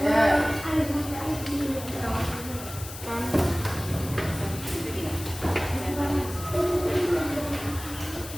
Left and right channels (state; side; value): noise; left; hiss, 12 dB below the sound